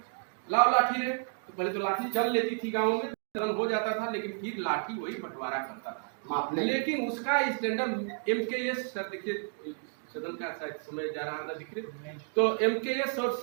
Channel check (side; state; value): left; silent; 57 dB below the other